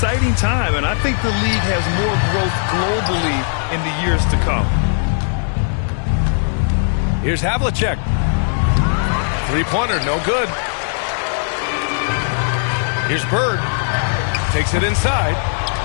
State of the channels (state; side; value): silent; right; 67 dB below the other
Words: time, and I think the league has more growth globally in the years to come. Here's Havlicek. Three-pointer, no good. Here's Bird. Takes it inside.